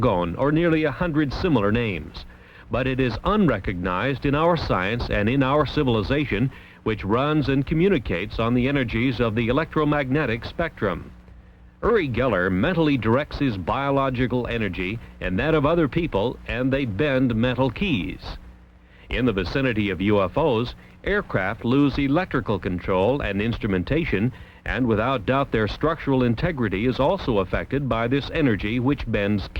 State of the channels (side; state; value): both; identical; correlation 1.00